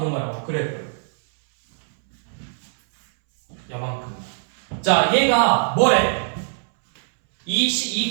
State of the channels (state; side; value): silent; left; 64 dB below the other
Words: 거야, 그래프. 요만큼. 자, 얘가 뭐래? 이